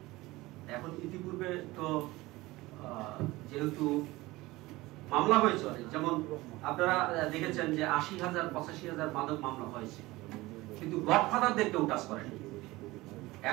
এখন ইতিপূর্বে তো যেহেতু মামলা হয়েছে অনেক, যেমন আপনারা দেখেছেন যে 80,000 85,000 মাদক মামলা হয়েছে, কিন্তু গডফাদারদের কেউ টাচ করেনি।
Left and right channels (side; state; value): left; quieter; 19.8 dB